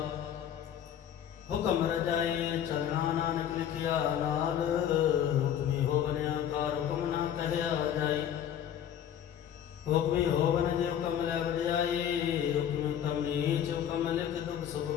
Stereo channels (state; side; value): quieter; right; 9.7 dB